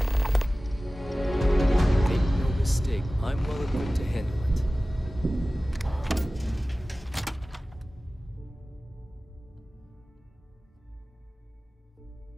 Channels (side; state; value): both; normal; correlation 0.97